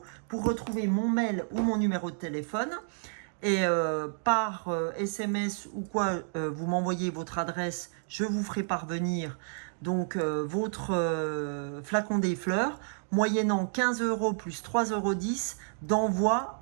pour retrouver mon mail ou mon numéro de téléphone. Et par SMS ou quoi, vous m'envoyez votre adresse, je vous ferai parvenir donc votre flacon des fleurs, moyennant 15 € plus 3,10 € d'envoi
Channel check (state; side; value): silent; left; digital silence